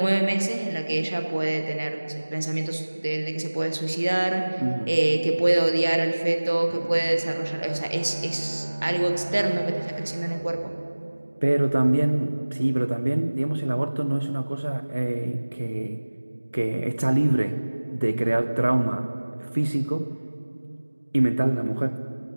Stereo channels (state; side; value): inverted; both; correlation -1.00